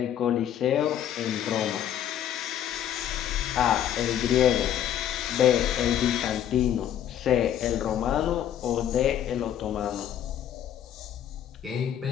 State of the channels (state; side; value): quieter; right; 10.4 dB